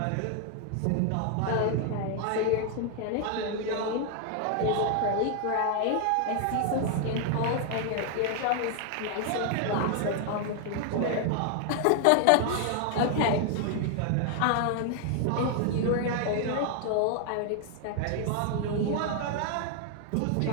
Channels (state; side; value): different; both; correlation 0.00